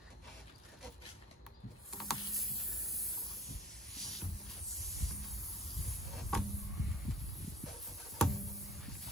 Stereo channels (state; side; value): normal; both; correlation 0.46